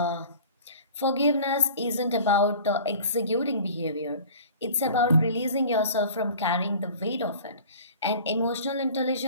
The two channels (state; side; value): inverted; both; correlation -0.43